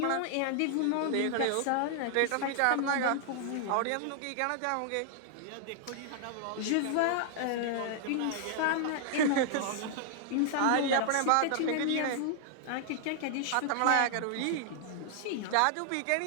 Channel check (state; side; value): different; both; correlation 0.00